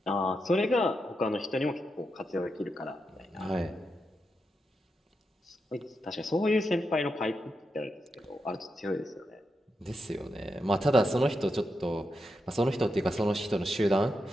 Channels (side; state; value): both; normal; correlation 0.86